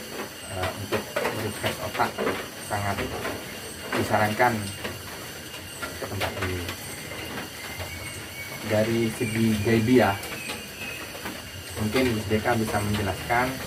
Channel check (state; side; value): identical; both; correlation 1.00